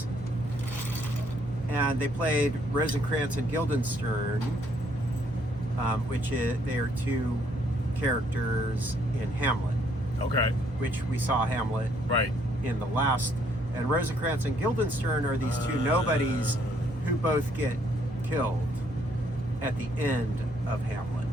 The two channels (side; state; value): right; noise; hum, 15 dB below the sound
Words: And they played Rosencrantz and Guildenstern, they are two characters in Hamlet. Okay. Which we saw Hamlet Right. in the last. And Rosencrantz and Guildenstern are these two nobodies who both get killed at the end of Hamlet.